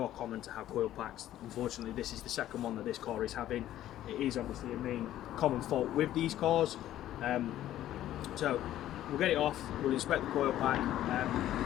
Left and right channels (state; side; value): quieter; right; 12.9 dB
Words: common to have coil packs. Unfortunately, this is the second one that this car is having. It is obviously a main common fault with these cars. So we'll get it off, we'll inspect the coil pack,